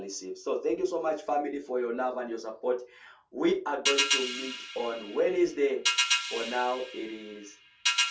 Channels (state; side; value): identical; both; correlation 1.00